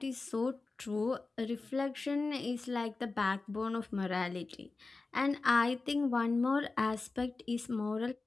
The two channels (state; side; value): quieter; right; 3.7 dB